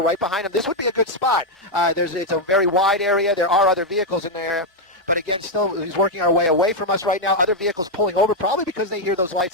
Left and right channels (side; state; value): both; normal; correlation 0.00